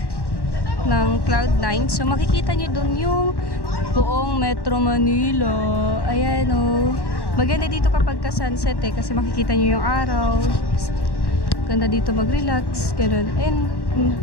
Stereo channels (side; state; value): right; late; 1.1 ms